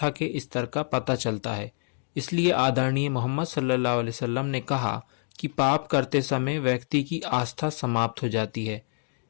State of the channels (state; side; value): silent; right; digital silence